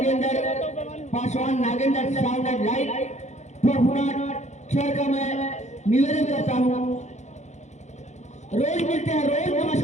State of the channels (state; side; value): late; right; 0.33 ms